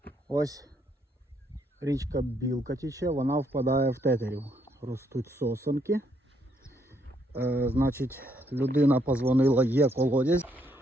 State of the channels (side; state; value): both; normal; correlation 0.73